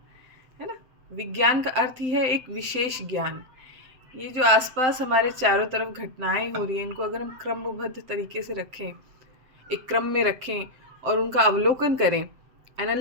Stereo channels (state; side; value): late; left; 7.8 ms